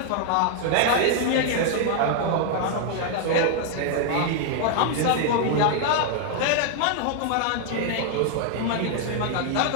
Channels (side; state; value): both; different; correlation 0.00